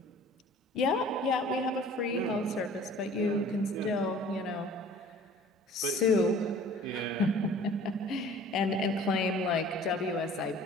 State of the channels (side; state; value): both; normal; correlation 0.48